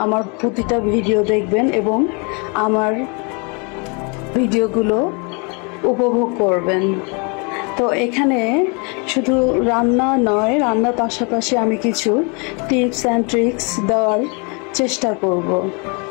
আমার প্রতিটা ভিডিও দেখবেন এবং আমার ভিডিওগুলো উপভোগ করবেন। তো এখানে শুধু রান্না নয়, রান্নার পাশাপাশি আমি কিছু টিপস অ্যান্ড ট্রিক্স দেওয়ার চেষ্টা করব।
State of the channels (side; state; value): right; quieter; 33.3 dB